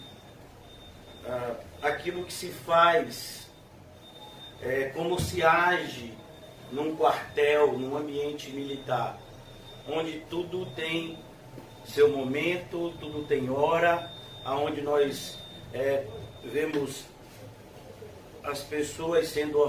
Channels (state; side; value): identical; both; correlation 1.00